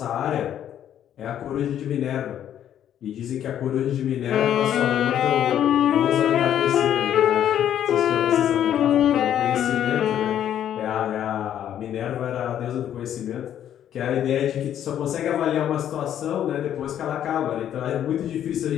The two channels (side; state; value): right; quieter; 10.4 dB